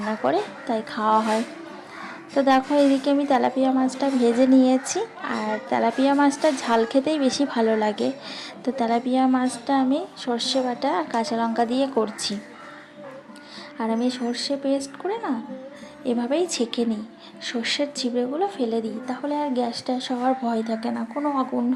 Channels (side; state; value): both; identical; correlation 1.00